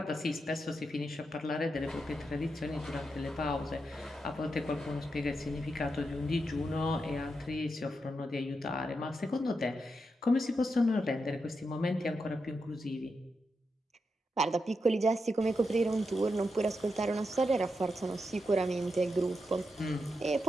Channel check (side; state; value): both; normal; correlation 0.86